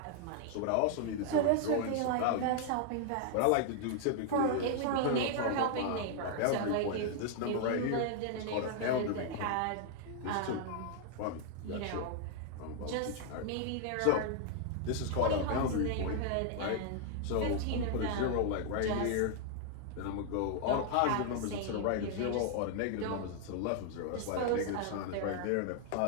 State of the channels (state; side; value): different; both; correlation 0.00